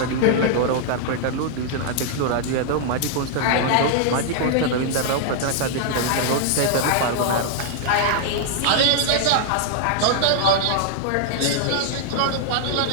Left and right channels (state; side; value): different; both; correlation -0.01